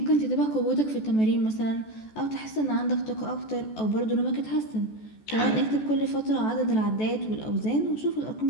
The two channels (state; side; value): late; right; 14 ms